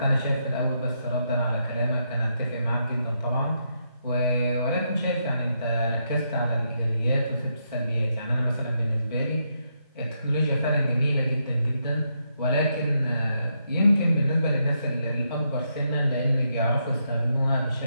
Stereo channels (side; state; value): both; inverted; correlation -0.80